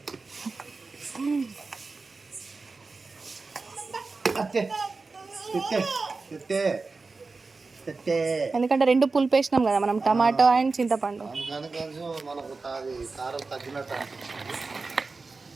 ఎందుకంటే రెండు పులుపు వేసినాం కదా మనం, టమాటో అండ్ చింతపండు. అందుకని కొంచెం మనకు అది కారం తగ్గినట్టు అనిపిస్తుంది.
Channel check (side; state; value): left; quieter; 4.0 dB